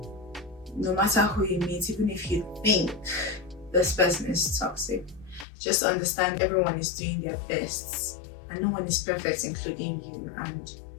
no matter who you meet, even if you think this person is toxic, just understand everyone is doing their best and no one is perfect, including you. And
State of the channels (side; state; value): right; drops out; at 5.5 s